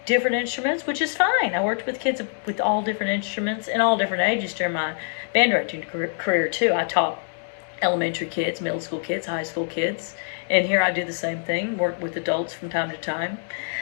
different instruments, which is fine. I worked with kids with all different instruments and all different ages during my band directing career too. I taught elementary kids, middle school kids, high school kids, and here I do the same thing, work with adults from time to time,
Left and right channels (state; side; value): silent; right; digital silence